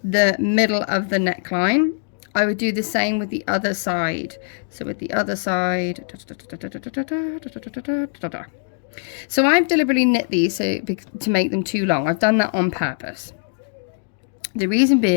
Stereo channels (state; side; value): silent; right; digital silence